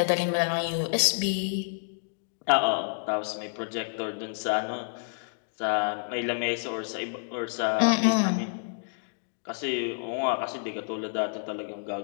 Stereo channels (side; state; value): right; silent; digital silence